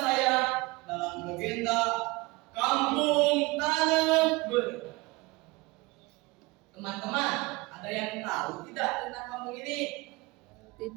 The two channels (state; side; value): quieter; left; 23.7 dB